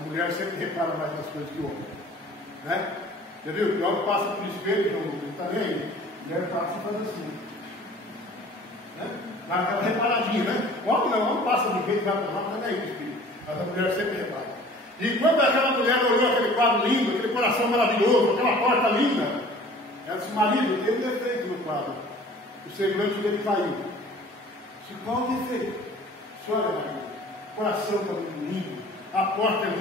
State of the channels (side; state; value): both; normal; correlation 0.48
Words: mulher sempre repara mais nas coisas que o homem, né? Você viu? O homem passa por espelho, não está nem aí. A mulher passa e faz assim, né? Dá aquela reparadinha, né? O homem não, o homem passa de jeito, vai para lá, não está nem aí o espelho. Mas a mulher sempre repara. E quando aquela mulher olhou aquele quadro lindo, aquele coração maravilhoso, aquela porta linda, Ela disse: marido, tem um defeito no quadro. O semblante dele caiu. Disse: qual o defeito? Olha, marido, o coração está muito lindo, a porta